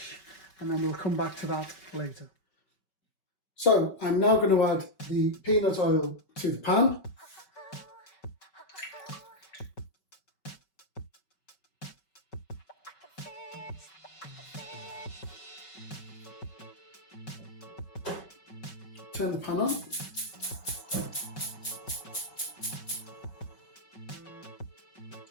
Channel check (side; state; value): right; late; 5.3 ms